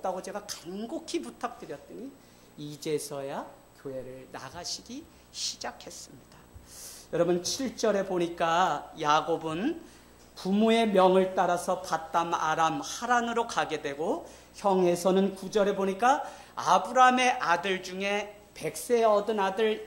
제가 간곡히 부탁드렸더니 이제서야 교회를 나가시기 시작했습니다. 여러분, 7절에 보니까 야곱은 부모의 명을 따라서 밧담 아람 하란으로 가게 되고, 형에서는 9절에 보니까 아브라함의 아들 중에 100세 얻은 아들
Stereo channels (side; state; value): both; identical; correlation 1.00